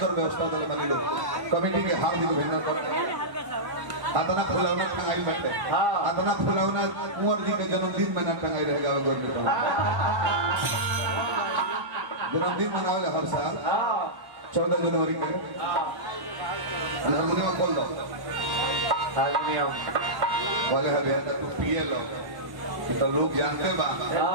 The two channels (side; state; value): left; late; 1.1 ms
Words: व्यवस्था दलवानी लोग कमेटी के हार्दिक अभिनंदन करते हैं आतना फुलौना टंगाई बैठे हां आतना फुलौना कुंवर जी के जन्मदिन में ना टंगाई रहेगा गवर्नमेंट जन्मदिन मनावे हर साल हां 14 जनवरी के हारमोनियम खोल दो हारमोनियम वाले हरिया तू पिए लो तो लोग जानते बा